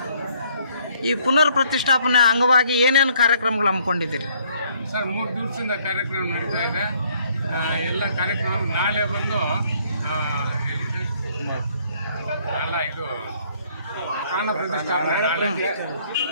ಈ ಪುನರ್ ಪ್ರತಿಷ್ಠಾಪನೆ ಅಂಗವಾಗಿ ಏನೇನು ಕಾರ್ಯಕ್ರಮಗಳು ಹಮ್ಮಿಕೊಂಡಿದ್ದೀರಿ? ಸರ್ 3 ದಿವಸದಿಂದ ಕಾರ್ಯಕ್ರಮ ನಡೀತಾ ಇದೆ. ಎಲ್ಲ ಕಾರ್ಯಕ್ರಮ ನಾಳೆ ಬಂದು ಅಲ್ಲ ಇದು ಪ್ರಾಣ ಪ್ರತಿಷ್ಠಾಪನೆ ನಾಳೆ.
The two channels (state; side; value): inverted; both; correlation -0.64